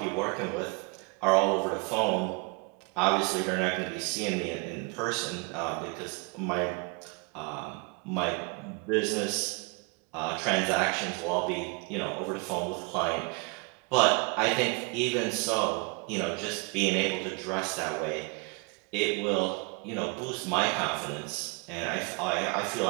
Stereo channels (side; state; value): left; quieter; 32.6 dB